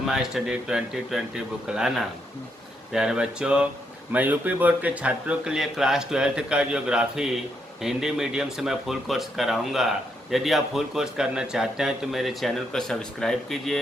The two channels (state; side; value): normal; both; correlation 0.78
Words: study 2020 बुकलाना। प्यारे बच्चों, मैं यूपी बोर्ड के छात्रों के लिए क्लास 12 का ज्योग्राफी हिंदी मीडियम से मैं फुल कोर्स कराऊंगा। यदि आप फुल कोर्स करना चाहते हैं तो मेरे चैनल को सब्सक्राइब